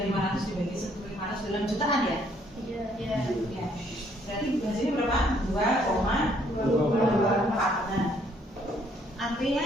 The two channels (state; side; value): normal; both; correlation 0.66